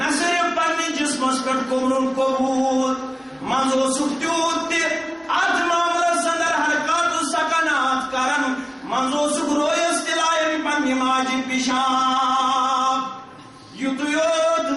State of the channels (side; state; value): both; identical; correlation 1.00